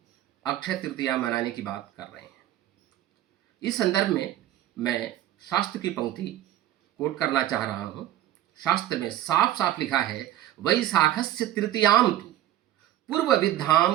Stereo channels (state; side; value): quieter; left; 13.1 dB